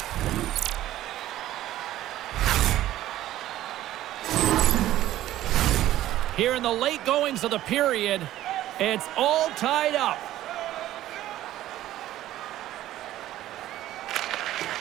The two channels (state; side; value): quieter; left; 14.0 dB